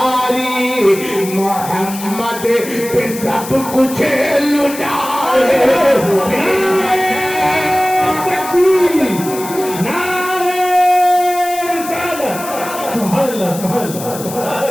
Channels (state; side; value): noise; left; hiss, 12 dB below the sound